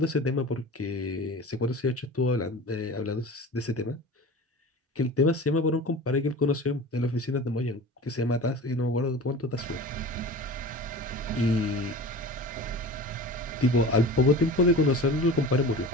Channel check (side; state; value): both; normal; correlation 0.36